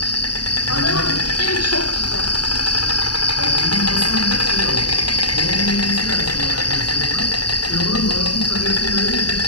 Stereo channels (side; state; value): right; late; 0.70 ms